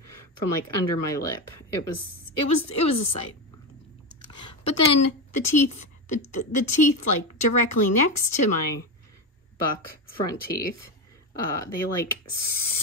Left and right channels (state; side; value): normal; both; correlation 0.16